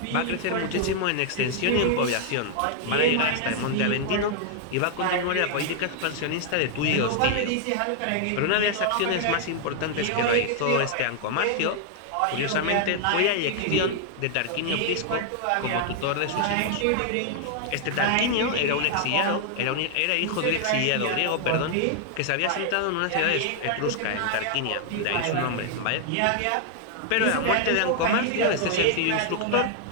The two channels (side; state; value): both; different; correlation 0.00